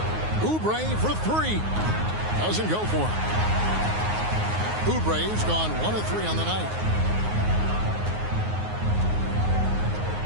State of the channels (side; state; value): left; late; 9.5 ms